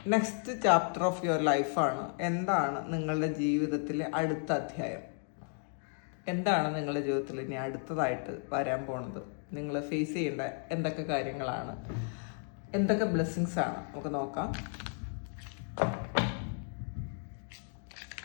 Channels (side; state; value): right; silent; 55 dB below the other